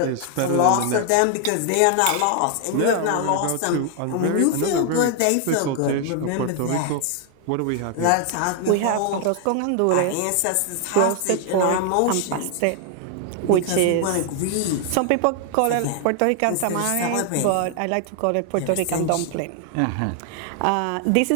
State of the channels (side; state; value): both; different; correlation 0.00